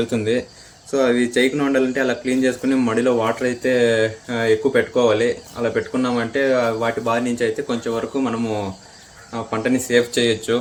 సో అవి చేయకుండా ఉండాలంటే అలా క్లీన్ చేసుకుని మడిలో వాటర్ అయితే ఎక్కువ పెట్టుకోవాలి. అలా పెట్టుకున్నామంటే వాటి బారి నుంచి అయితే కొంచెం వరకు మనము పంటని సేవ్ చేయొచ్చు.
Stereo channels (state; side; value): identical; both; correlation 1.00